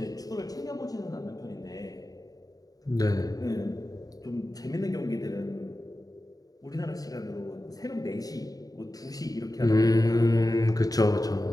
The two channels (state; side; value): late; right; 0.18 ms